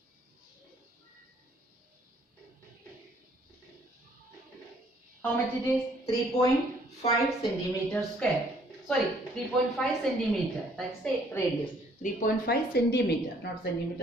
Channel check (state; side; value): normal; both; correlation 0.63